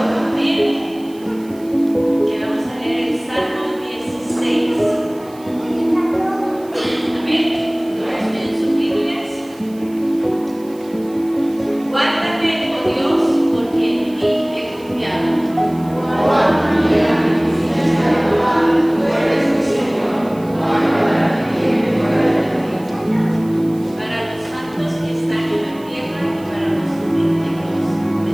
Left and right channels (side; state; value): right; noise; hiss, 25 dB below the sound